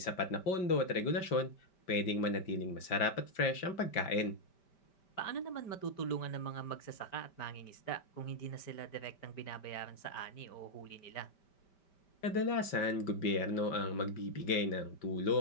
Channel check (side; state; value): right; late; 5.1 ms